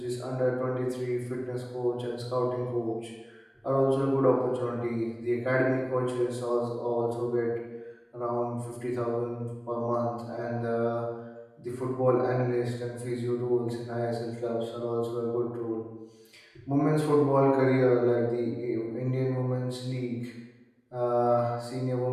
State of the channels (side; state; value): both; identical; correlation 1.00